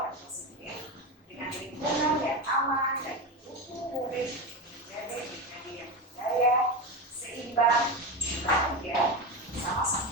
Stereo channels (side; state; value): both; normal; correlation 0.19